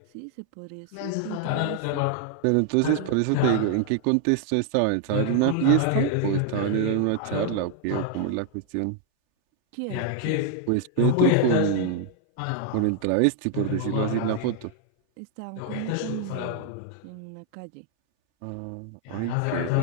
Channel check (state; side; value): different; both; correlation 0.00